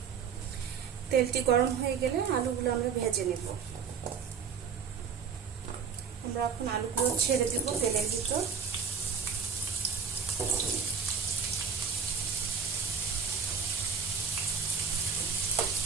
তেলটি গরম হয়ে গেলে আলুগুলো আমরা ভেজে নেব। আমরা এখন আলুগুলো ছেড়ে দেব তেলের ভিতর।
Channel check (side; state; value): left; quieter; 6.1 dB